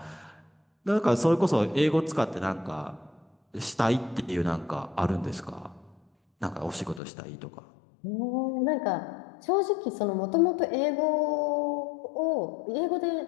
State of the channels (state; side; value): drops out; right; at 7.0 s